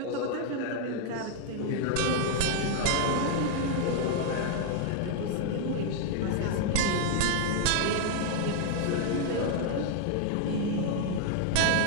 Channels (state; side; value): different; both; correlation 0.00